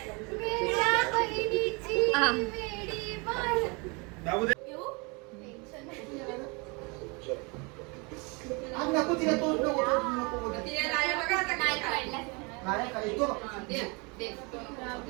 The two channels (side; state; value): left; quieter; 29.8 dB